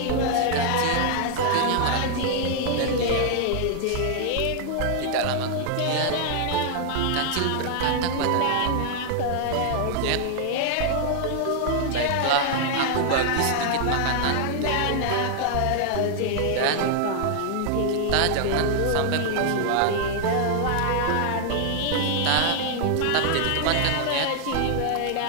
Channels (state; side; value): different; both; correlation 0.00